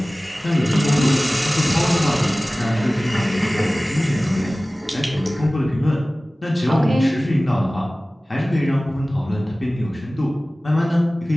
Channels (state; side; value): normal; both; correlation 0.98